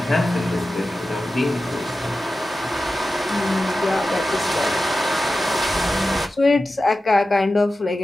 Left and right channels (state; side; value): normal; both; correlation 0.93